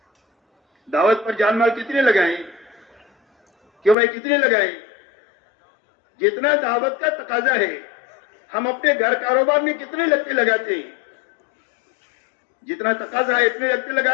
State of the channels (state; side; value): drops out; right; at 4.0 s